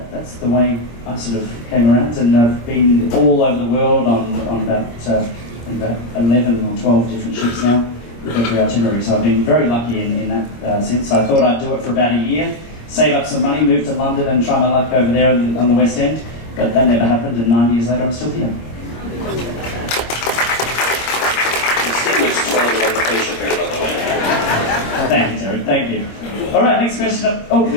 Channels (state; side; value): late; right; 25 ms